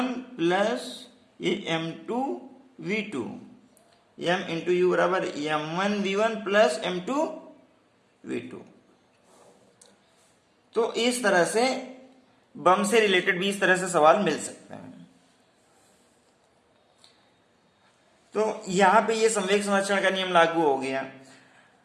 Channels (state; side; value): identical; both; correlation 1.00